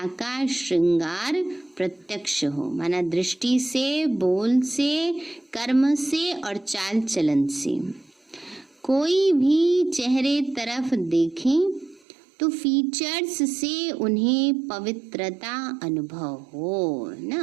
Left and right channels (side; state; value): left; drops out; at 12.0 s